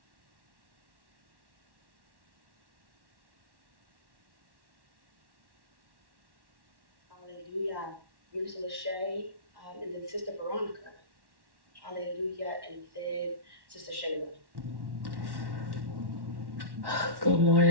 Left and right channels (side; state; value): left; late; 1.1 ms